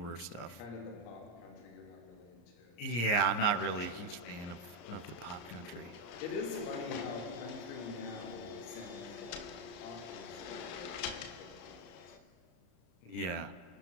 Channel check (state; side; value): late; right; 34 ms